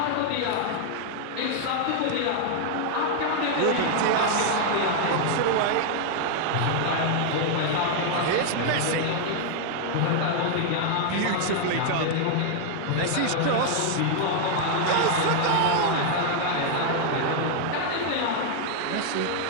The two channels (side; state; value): both; different; correlation 0.00